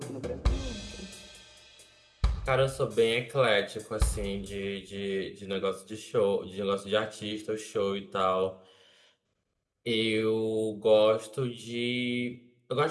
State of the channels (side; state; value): both; identical; correlation 1.00